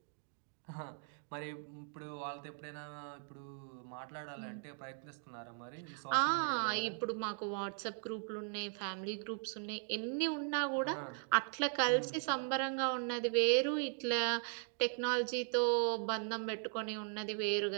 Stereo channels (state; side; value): silent; left; 52 dB below the other